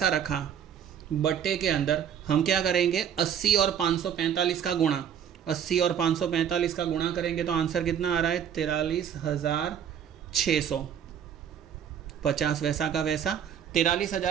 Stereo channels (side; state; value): left; quieter; 8.8 dB